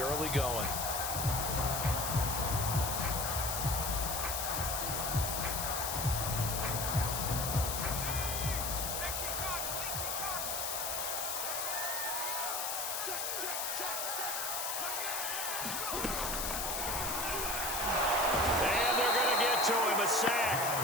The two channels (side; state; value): left; noise; hiss, 1 dB below the sound